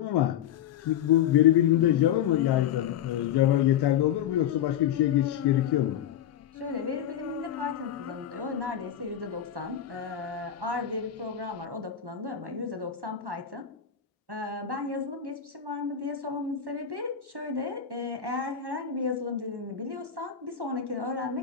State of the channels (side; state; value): right; quieter; 9.6 dB